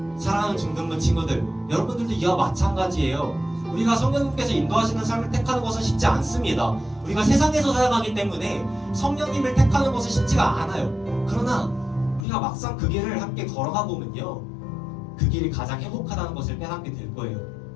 사랑하는 중등부 친구들, 여러분들도 이와 마찬가지예요. 우리가 성령님께서 인도하시는 삶을 택하는 것은 쉽지 않습니다. 우리가 세상에서 살아가기 때문에 성령님을 택하는 것은 쉽지가 않아요. 그러나 우리가 막상 그 길을 함께 걸어가 보면요, 그 길이 가장 행복하다는 것을 깨닫게 될 거예요.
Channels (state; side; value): drops out; right; at 12.2 s